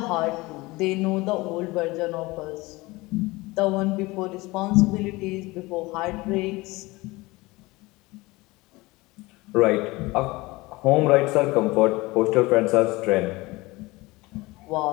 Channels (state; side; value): quieter; right; 21.9 dB